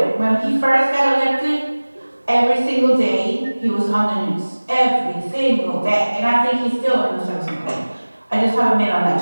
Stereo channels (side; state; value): both; inverted; correlation -1.00